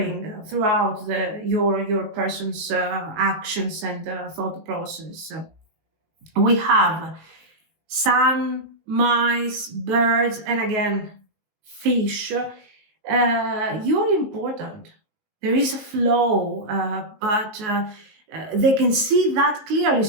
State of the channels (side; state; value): left; late; 19 ms